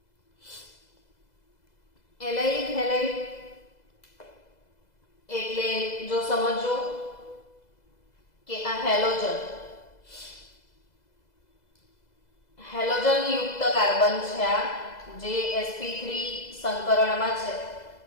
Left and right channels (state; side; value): late; right; 2.0 ms